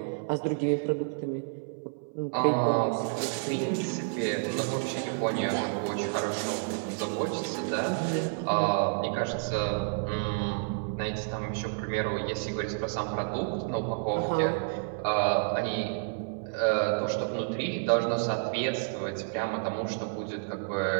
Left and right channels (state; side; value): silent; left; 58 dB below the other